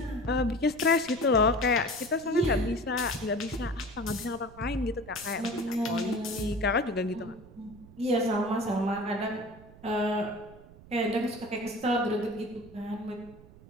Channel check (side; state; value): right; noise; rumble, 21 dB below the sound